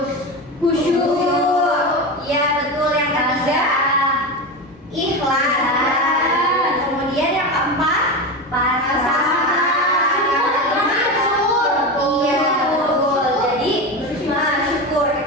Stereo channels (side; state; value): both; normal; correlation 0.21